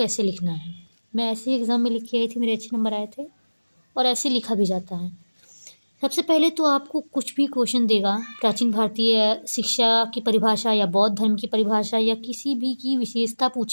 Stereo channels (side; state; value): both; inverted; correlation -1.00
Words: लिखना है। मैं ऐसे ही एग्ज़ाम में लिख के आई थी, मेरे अच्छे नंबर आए थे और ऐसे लिखा भी जाता है। सबसे पहले तो आपको कुछ भी क्वेश्चन देगा, प्राचीन भारतीय शिक्षा की परिभाषा या बौद्ध धर्म की परिभाषा या किसी भी की विशेषता